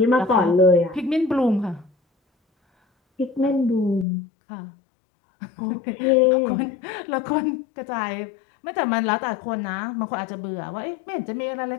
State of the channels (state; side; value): drops out; right; at 4.0 s